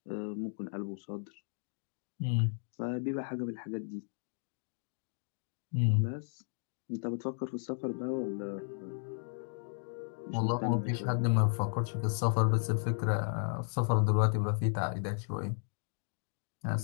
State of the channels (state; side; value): silent; right; digital silence